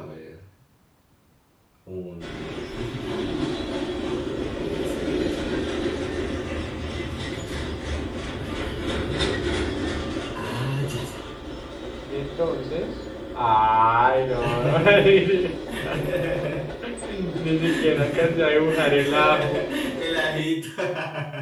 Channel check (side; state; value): both; identical; correlation 1.00